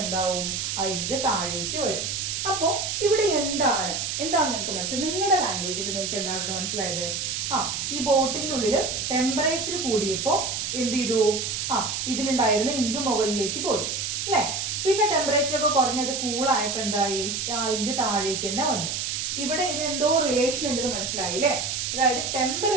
എന്താവും, ആ ഇങ്ക് താഴേക്ക് വരും. അപ്പോ ഇവിടെ എന്താണ് നിങ്ങൾക്ക് മനസ്സിലായത്, നിങ്ങളുടെ ലാംഗ്വേജിൽ നിങ്ങൾക്ക് എന്താണ് ഇവിടെ മനസ്സിലായത്? ഈ ബോട്ടിലിനുള്ളിൽ ടെമ്പറേച്ചർ കൂടിയപ്പോ എന്ത് ചെയ്തു, ഇതിലുണ്ടായിരുന്ന ഇങ്ക് മുകളിലേക്ക് പോയി അല്ലെ. പിന്നെ ടെമ്പറേച്ചർ ഒക്കെ കുറഞ്ഞത് കൂളായപ്പോ എന്തായി, ഇങ്ക് താഴേക്ക് തന്നെ വന്നു. ഇവിടെ ഇതിനെന്തോ റിലേഷൻ ഉണ്ടെന്ന് മനസ്സിലായില്ലേ. അതായത്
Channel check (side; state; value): right; noise; hiss, 2 dB below the sound